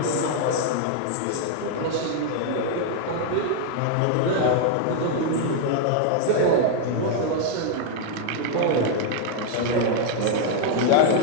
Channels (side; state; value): both; different; correlation 0.00